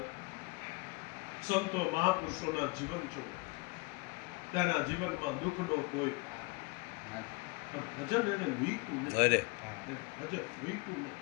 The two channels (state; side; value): quieter; right; 26.6 dB